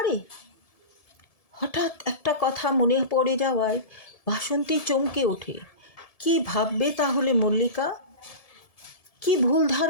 হঠাৎ একটা কথা মনে পড়ে যাওয়ায় বাসন্তী চমকে ওঠে। কি ভাববে তাহলে মল্লিকা? কি ভুল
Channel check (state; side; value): late; right; 1.7 ms